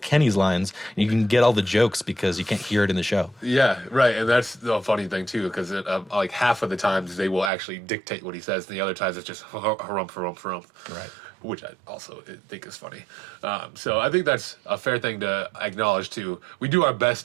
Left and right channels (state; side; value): drops out; left; at 7.5 s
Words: Kenny's lines, and you can get all the jokes because you can't hear it in the show. Yeah, right, and that's the funny thing, too, because like half of the times they will actually dictate what he says, and the other times it's just harumph. Right. Which I also think is funny. So I think that's a fair thing to acknowledge too. We do our